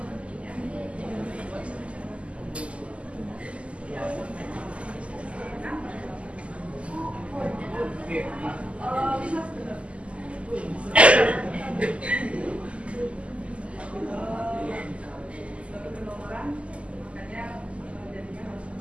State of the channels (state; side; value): late; left; 0.059 ms